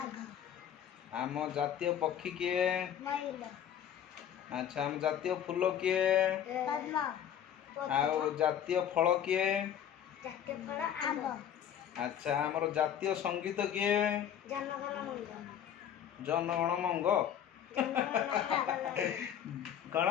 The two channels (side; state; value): right; quieter; 9.6 dB